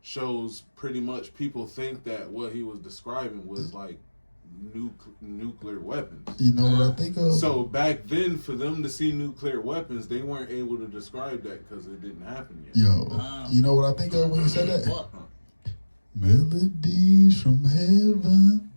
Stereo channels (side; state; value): both; inverted; correlation -1.00